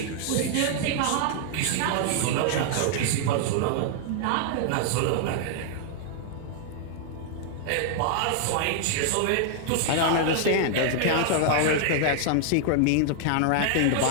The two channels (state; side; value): different; both; correlation 0.00